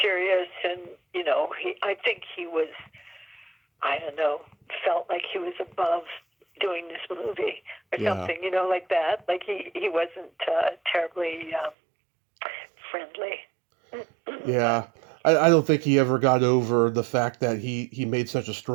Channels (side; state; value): left; drops out; at 11.8 s